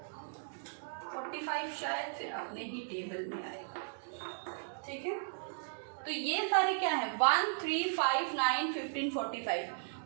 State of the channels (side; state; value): left; silent; digital silence